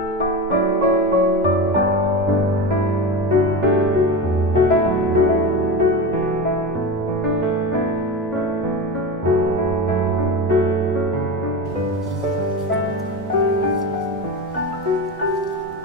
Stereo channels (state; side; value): normal; both; correlation 0.23